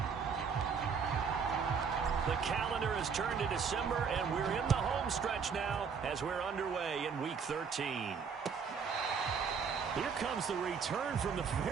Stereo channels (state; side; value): quieter; left; 6.1 dB